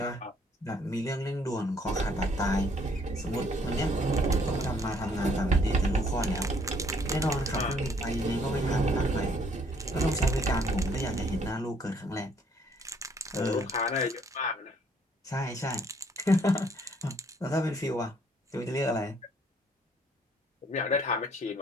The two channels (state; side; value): normal; both; correlation 0.64